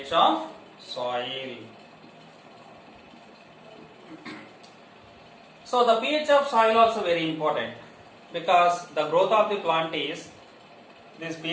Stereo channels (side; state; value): both; identical; correlation 1.00